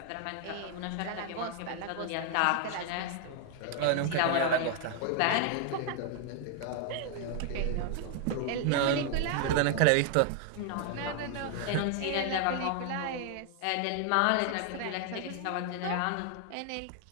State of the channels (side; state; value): both; different; correlation 0.00